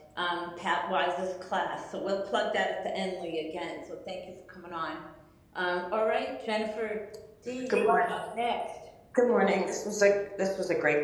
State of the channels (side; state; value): both; identical; correlation 1.00